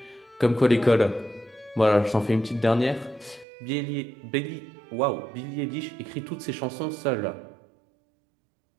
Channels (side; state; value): left; drops out; at 3.5 s